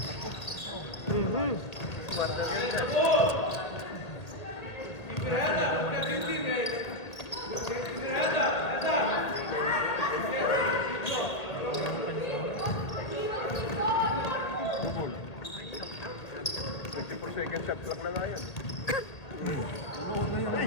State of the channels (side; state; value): right; late; 2.0 ms